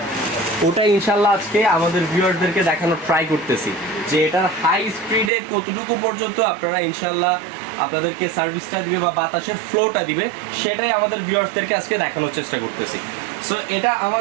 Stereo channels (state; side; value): drops out; left; at 5.3 s